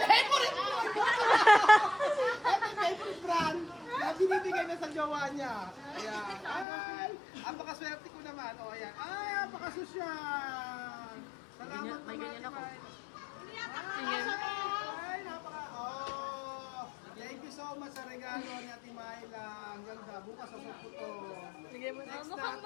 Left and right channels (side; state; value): right; drops out; at 6.7 s